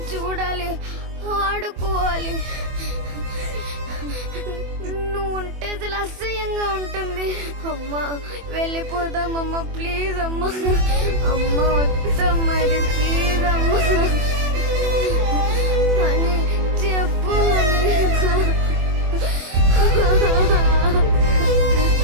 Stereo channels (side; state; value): left; late; 24 ms